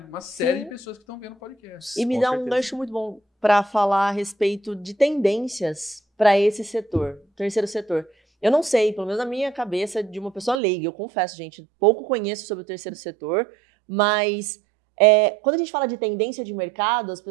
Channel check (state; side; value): drops out; left; at 10.6 s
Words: série Sim. de pessoas que estão vendo o podcast. E me Com dá um certeza. gancho muito bom para falar a respeito de tendências para esse setor, terceiro setor. Eu não sei, pelo menos na minha cabeça de uma pessoa leiga, eu confesso, gente, pouco conheço sobre o terceiro setor, mas quando a gente fala de tendência de mercado, as